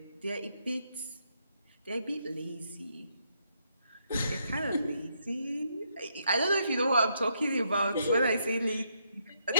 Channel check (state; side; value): inverted; both; correlation -0.76